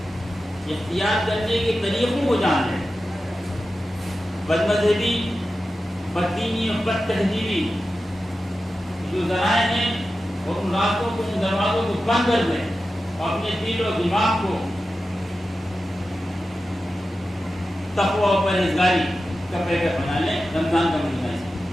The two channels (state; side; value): normal; both; correlation 0.93